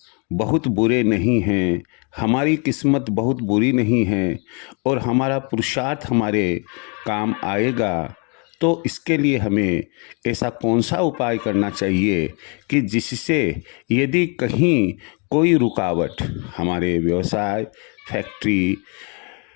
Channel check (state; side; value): quieter; right; 35.1 dB